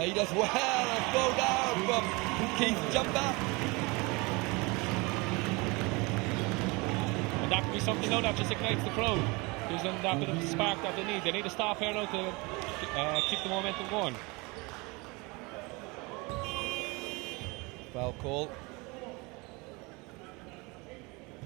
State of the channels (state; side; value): quieter; left; 26.5 dB